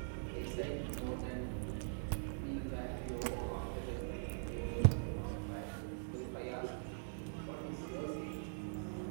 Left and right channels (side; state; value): left; silent; digital silence